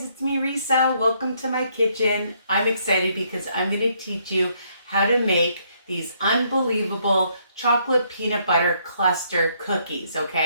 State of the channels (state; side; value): inverted; both; correlation -0.70